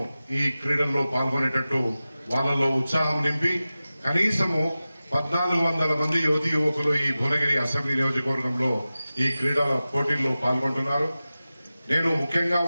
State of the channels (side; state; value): both; inverted; correlation -0.96